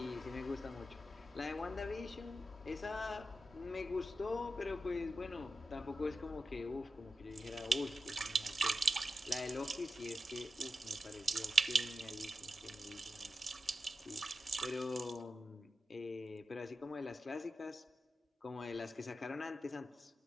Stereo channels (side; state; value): both; normal; correlation 0.91